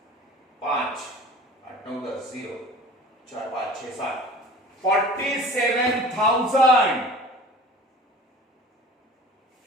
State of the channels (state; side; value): normal; both; correlation 0.43